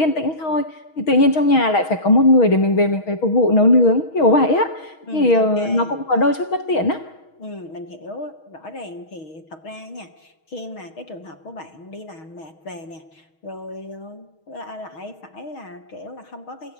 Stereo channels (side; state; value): right; late; 6.3 ms